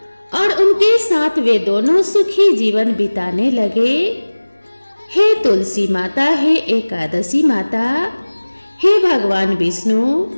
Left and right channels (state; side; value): inverted; both; correlation -1.00